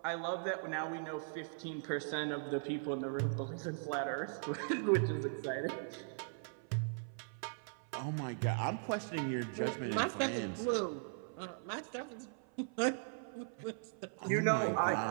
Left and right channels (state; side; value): silent; left; 52 dB below the other